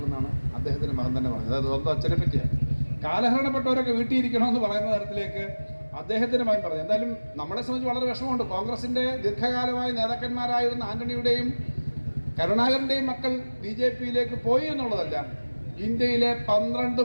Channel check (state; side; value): inverted; both; correlation -1.00